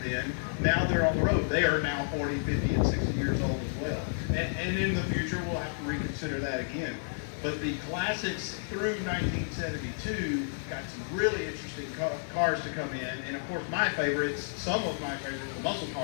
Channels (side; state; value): right; silent; digital silence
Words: then. Now they're on the road. They are now 40, 50, and 60 years old as well. And in the future, we'll have to reconsider that again. But the classics through 1972 got some really interesting cars to come in. And of course, my favorites, some of my favorites, the muscle